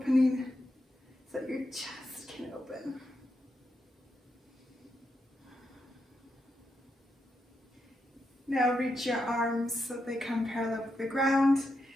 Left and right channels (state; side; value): normal; both; correlation 0.84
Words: so that your chest can open. Now reach your arms so they come parallel with the ground.